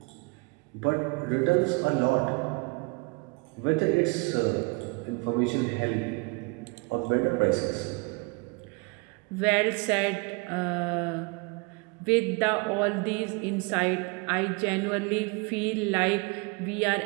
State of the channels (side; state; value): left; quieter; 29.0 dB